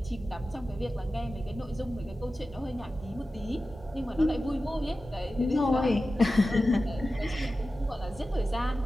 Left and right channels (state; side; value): normal; both; correlation 0.94